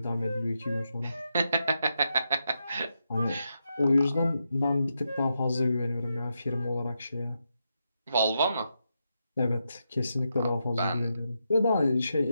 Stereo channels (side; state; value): both; inverted; correlation -0.84